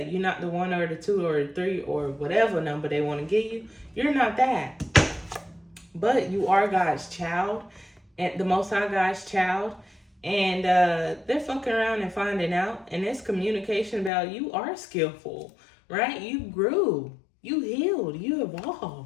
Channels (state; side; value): drops out; right; at 14.1 s